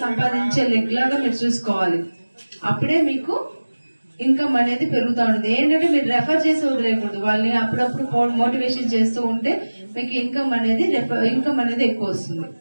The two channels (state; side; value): inverted; both; correlation -1.00